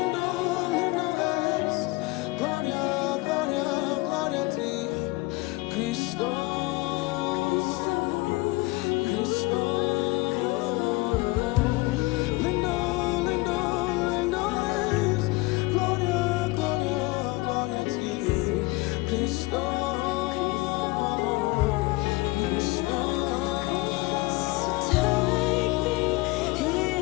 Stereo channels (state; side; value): quieter; right; 22.6 dB